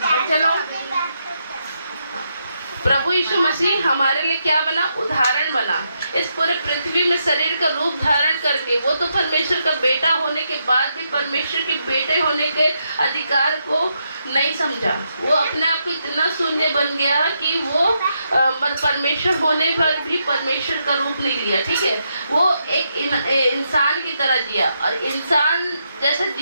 चलो, प्रभु यीशु मसीह हमारे लिए क्या बना? उदाहरण बना। इस पूरे पृथ्वी में शरीर का रूप धारण करके, वो तो परमेश्वर का बेटा होने के बाद भी परमेश्वर के बेटे होने के अधिकार को नहीं समझा। वो अपने आप को इतना शून्य बन गया कि वो परमेश्वर होने पर भी परमेश्वर का रूप नहीं लिया, ठीक है। वो एक इंसान की तरह जिया, और इंसान जैसा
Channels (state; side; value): inverted; both; correlation -0.81